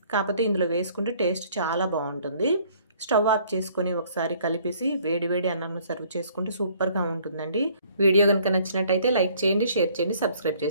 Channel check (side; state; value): both; inverted; correlation -0.59